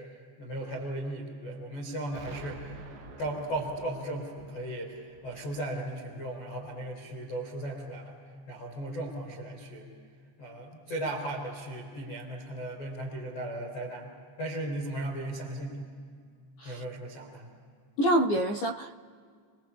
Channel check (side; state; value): right; late; 15 ms